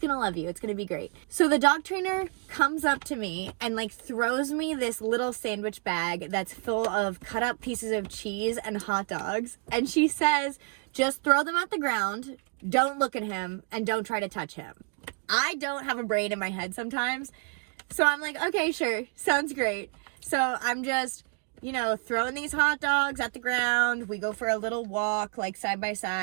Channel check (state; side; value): quieter; left; 35.5 dB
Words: love you, it's gonna be great. So the dog trainer comes up to me and like throws me this little sandwich bag that's full of cut up pieces of cheese and hot dogs, and she says, just throw them at the ground, don't look at him, and don't try to touch him. I don't have a brain in my head sometimes. So I'm like, okay, sure, sounds great. So I'm just, throwing these hot dogs at the ground. We go for a little walk, like side by